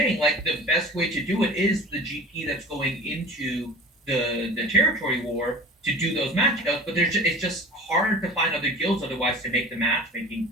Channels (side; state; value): both; normal; correlation 0.39